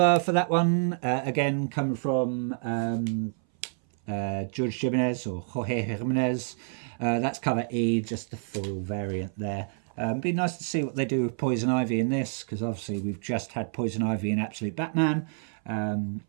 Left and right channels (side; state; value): left; silent; 58 dB below the other